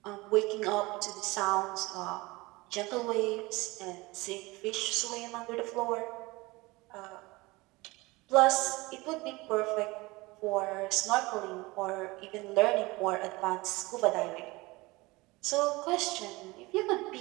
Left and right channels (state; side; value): quieter; left; 22.4 dB